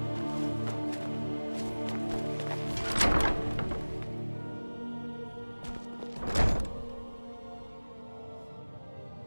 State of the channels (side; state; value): both; inverted; correlation -1.00